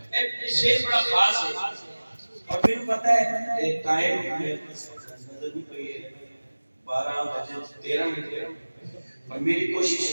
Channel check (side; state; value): both; inverted; correlation -1.00